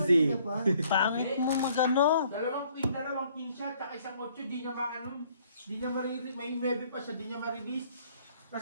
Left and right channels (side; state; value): both; inverted; correlation -0.63